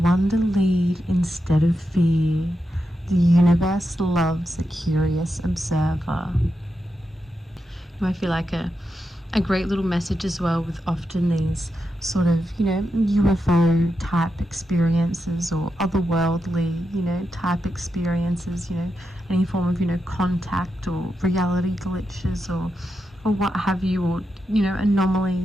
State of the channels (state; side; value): normal; both; correlation 0.87